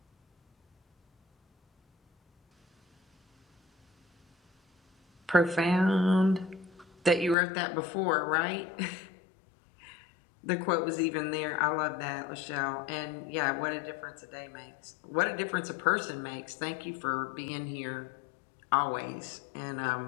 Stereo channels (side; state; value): right; drops out; at 7.4 s